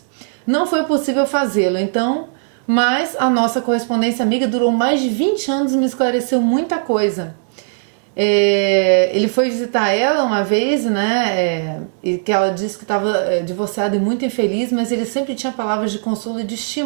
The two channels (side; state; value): left; silent; 67 dB below the other